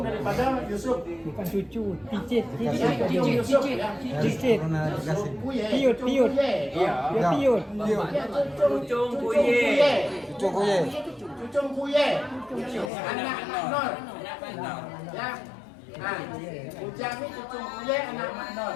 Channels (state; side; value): drops out; right; at 12.9 s